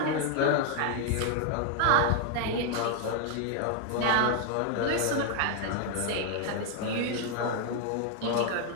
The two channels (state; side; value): different; both; correlation 0.01